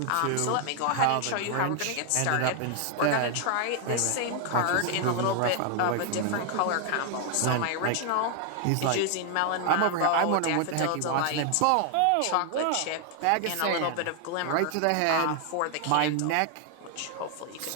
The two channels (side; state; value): both; different; correlation 0.00